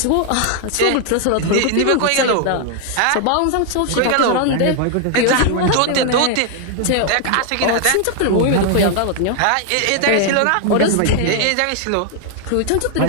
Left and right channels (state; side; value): different; both; correlation 0.00